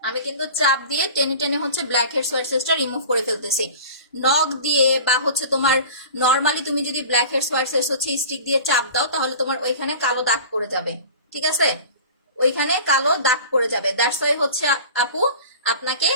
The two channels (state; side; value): inverted; both; correlation -0.38